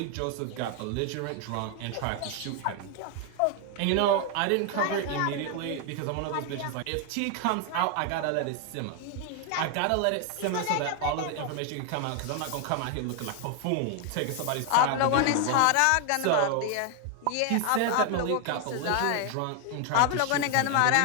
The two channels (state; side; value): different; both; correlation 0.00